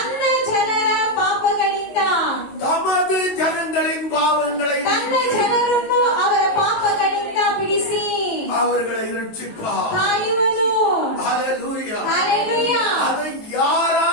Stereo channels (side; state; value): right; late; 19 ms